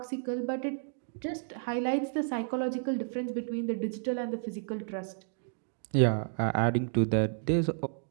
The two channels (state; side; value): silent; left; digital silence